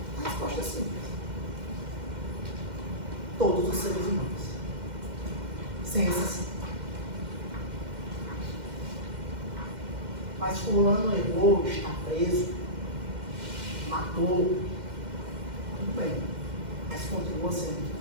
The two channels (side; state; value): left; late; 2.1 ms